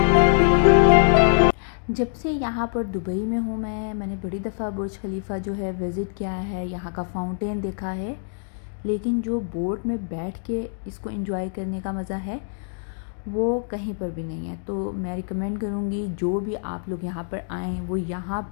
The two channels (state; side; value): silent; right; digital silence